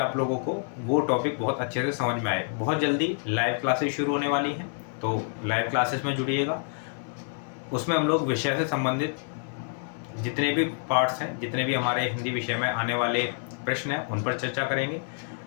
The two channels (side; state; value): right; silent; 60 dB below the other